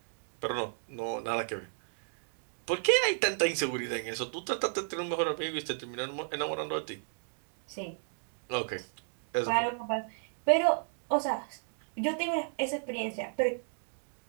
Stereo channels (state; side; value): silent; left; digital silence